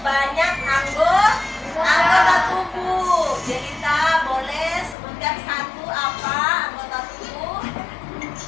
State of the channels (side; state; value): right; drops out; at 5.0 s